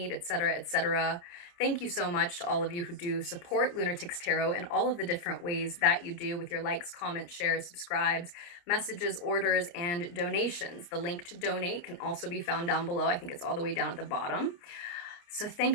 etc., etc. Thank you so much to all of you who do support Lunatics Tarot in all of the different ways that you do, with your likes, comments, shares, subscribes, messages, orders, and donations. The link to donate can also be found down below. I think it's all the way down at the bottom. So thank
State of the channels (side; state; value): right; late; 29 ms